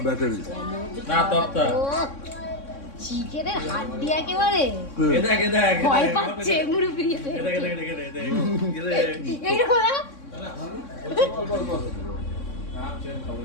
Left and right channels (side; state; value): right; late; 3.6 ms